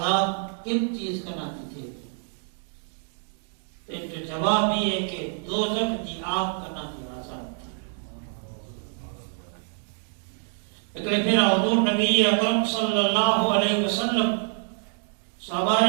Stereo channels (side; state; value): left; silent; 58 dB below the other